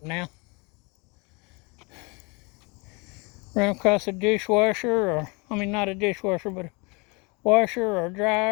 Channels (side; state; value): right; quieter; 29.2 dB